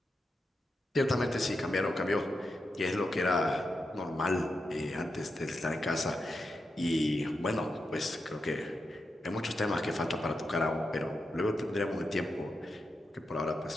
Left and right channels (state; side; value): normal; both; correlation 0.87